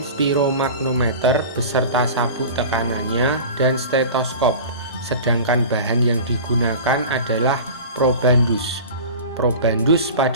spiromaknometer beserta sabuk tekanannya dan stetoskop. Sedangkan bahan yang digunakan adalah probandus. Probandus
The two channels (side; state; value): both; inverted; correlation -0.35